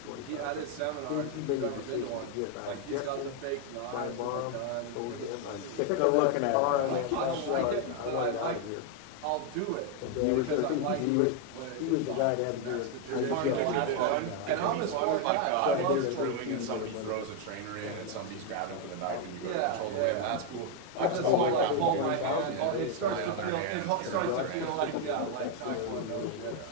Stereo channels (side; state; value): both; different; correlation 0.01